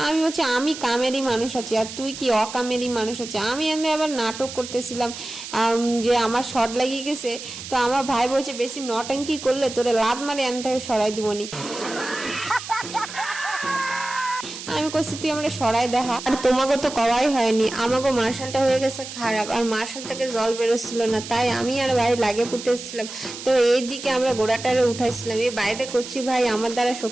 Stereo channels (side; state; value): right; noise; hiss, 11 dB below the sound